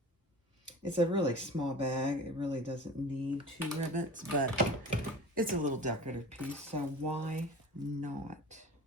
It's a really small bag. It really doesn't need 2 rivets, but it's a little decorative piece, so why not?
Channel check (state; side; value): normal; both; correlation 0.38